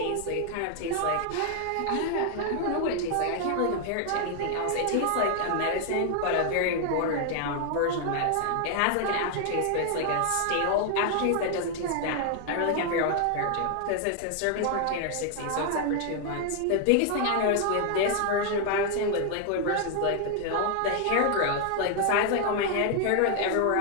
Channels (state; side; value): different; both; correlation 0.00